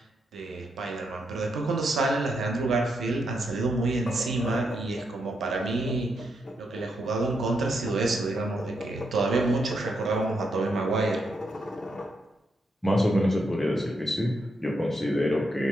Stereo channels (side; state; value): both; normal; correlation 0.81